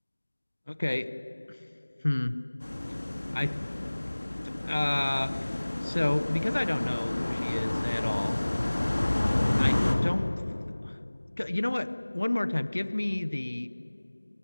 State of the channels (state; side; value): inverted; both; correlation -1.00